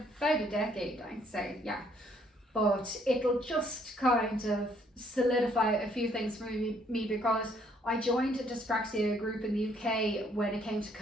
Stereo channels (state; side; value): normal; both; correlation 0.66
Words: about a decade, I'd say, yeah. But it'll just kind of solidify a few things for me because I joined a dyspraxia group in the UK when it came to